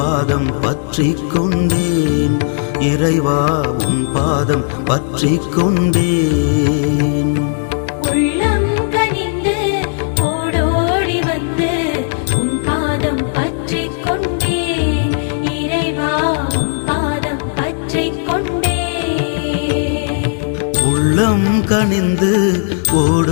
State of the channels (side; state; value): right; silent; digital silence